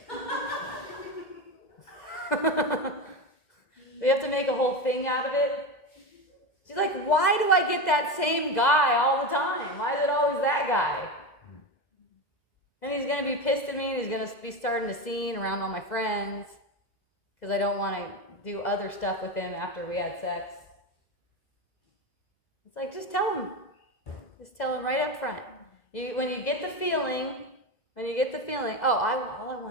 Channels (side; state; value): right; late; 2.0 ms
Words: We have to make a whole thing out of it. She's like, why do I get that same guy all the time? Why is it always that guy? And he's going to be pissed at me, and he's going to be starting a scene around all my friends because I don't want to do other stuff with him after we had sex. It's like, just tell him. Just tell him right up front. When you get the feeling, all I